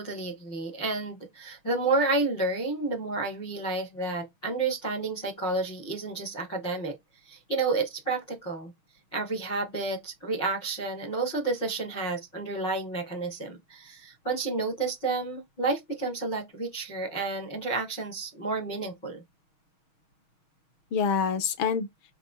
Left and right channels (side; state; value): right; late; 6.3 ms